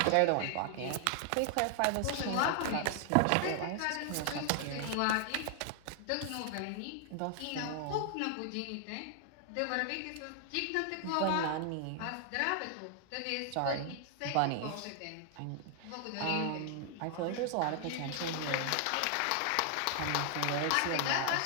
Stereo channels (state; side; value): different; both; correlation 0.00